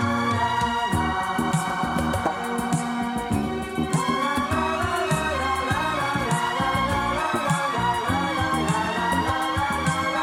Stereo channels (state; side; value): identical; both; correlation 1.00